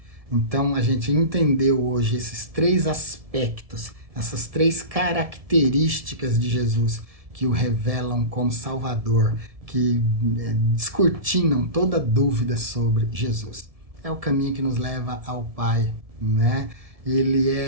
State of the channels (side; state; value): left; late; 1.7 ms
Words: Então, a gente entendeu hoje esses 3 aspectos, essas 3 características de Jesus que o revelam como Salvador, que descortinam toda dúvida sobre Jesus. É o caminho que nos leva ao Pai, né? Ele